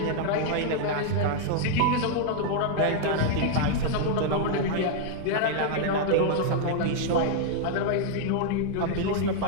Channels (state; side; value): different; both; correlation 0.00